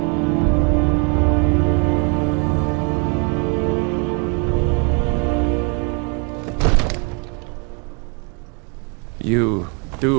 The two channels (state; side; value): quieter; left; 35.5 dB